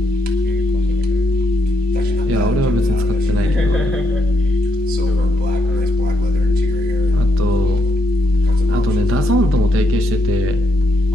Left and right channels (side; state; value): both; normal; correlation 0.78